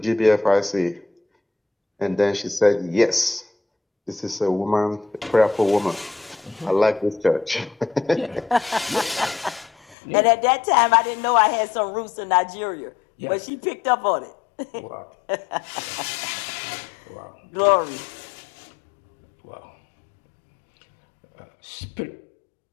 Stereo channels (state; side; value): drops out; right; at 10.0 s